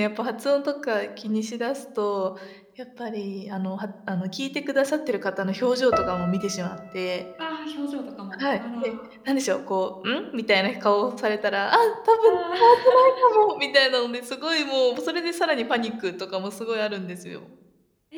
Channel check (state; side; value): identical; both; correlation 1.00